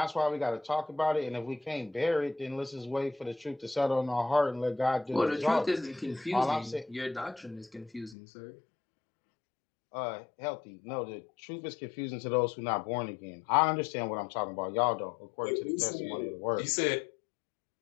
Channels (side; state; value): right; drops out; at 8.2 s